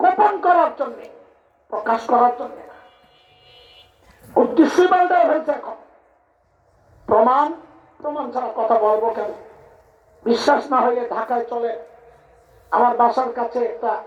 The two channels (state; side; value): identical; both; correlation 1.00